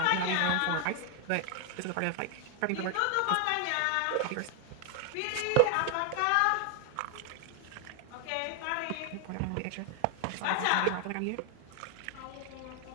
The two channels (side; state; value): both; different; correlation 0.00